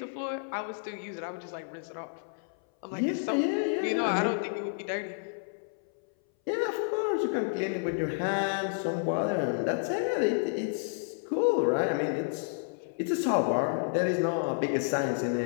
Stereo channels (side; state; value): right; silent; 58 dB below the other